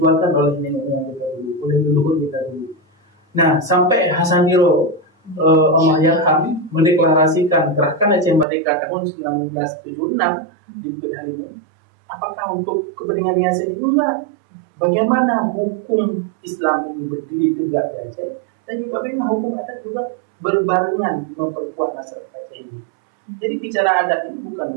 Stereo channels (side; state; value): left; drops out; at 8.5 s